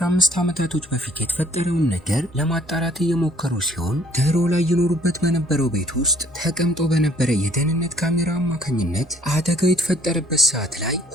ዓመታቶች በፊት የተፈጠረውን ነገር ለማጣራት እየሞከሩ ሲሆን ድሮ ላይ ይኖሩበት በነበረው ቤት ውስጥ ተቀምጦ በነበረ የደህንነት ካሜራ አማካኝነት አደጋው የተፈጠረበት ሰዓት ላይ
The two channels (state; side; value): normal; both; correlation 0.60